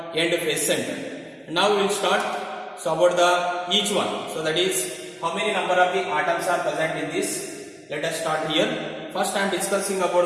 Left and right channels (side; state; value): both; identical; correlation 1.00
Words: End face centered. And now we will start. So about the each one. So that is how many number of the atoms are present in this. Let us start here. First I am discussing